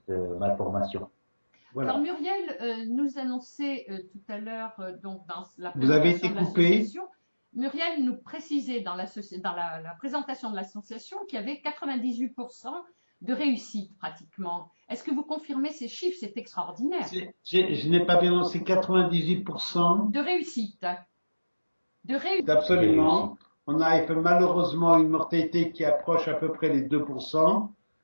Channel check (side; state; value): both; inverted; correlation -1.00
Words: malformation. Voilà. Alors Muriel nous annonçait tout à l'heure, donc dans la Vous avez présentation été de coupé. l'association, Muriel nous précisait dans la présentation de l'association qu'il y avait 98% de réussite pratiquement. Est-ce que vous confirmez ces chiffres? C'est extraordinaire. Je n'ai pas bien c'est 98%. De réussite. Absolument. On a malheureusement une mortalité qui approche à peu près les 2%.